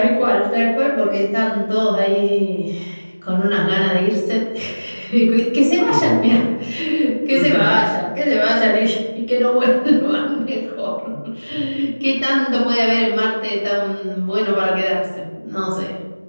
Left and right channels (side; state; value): both; inverted; correlation -1.00